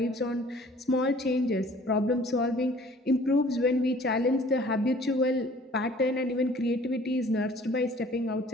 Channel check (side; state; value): both; normal; correlation 0.53